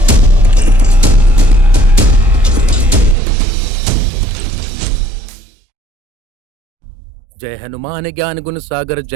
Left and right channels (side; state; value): left; drops out; at 3.2 s